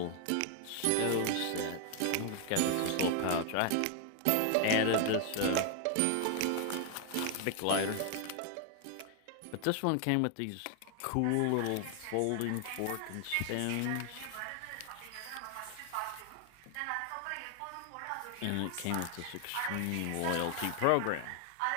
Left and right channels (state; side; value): different; both; correlation 0.00